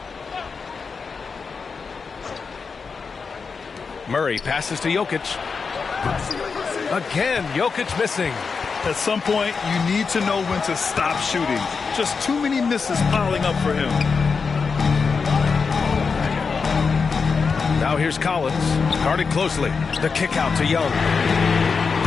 Murray passes to Jokic. Again, Jokic missing. At some point, you need to know when to stop shooting. Just too many misses piling up for him. Now here's Collins, guarded closely. The kick out to Young.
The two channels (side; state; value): right; quieter; 5.2 dB